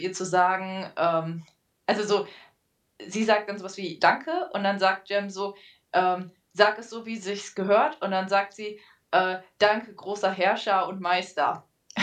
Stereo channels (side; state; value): both; identical; correlation 1.00